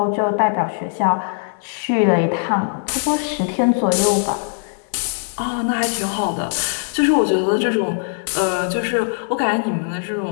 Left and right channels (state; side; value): silent; right; 66 dB below the other